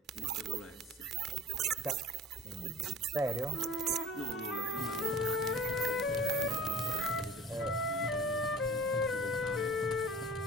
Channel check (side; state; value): both; normal; correlation 0.43